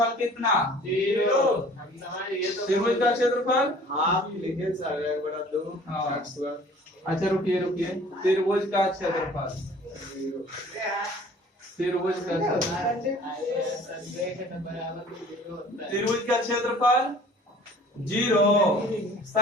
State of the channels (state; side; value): normal; both; correlation 0.50